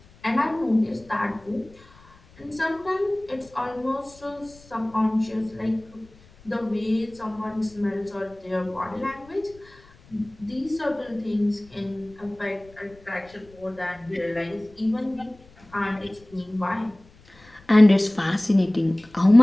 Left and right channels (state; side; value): noise; left; rumble, 26 dB below the sound